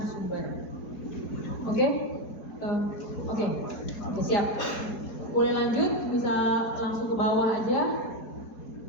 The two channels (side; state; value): right; late; 5.0 ms